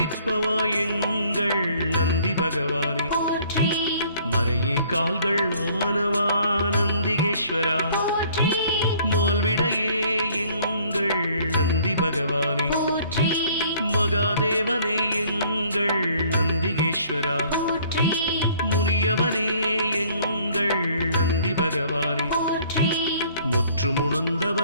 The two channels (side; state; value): both; inverted; correlation -0.57